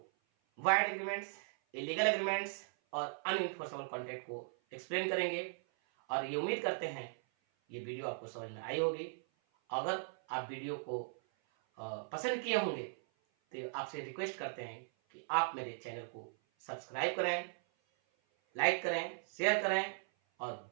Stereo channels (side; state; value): left; silent; 52 dB below the other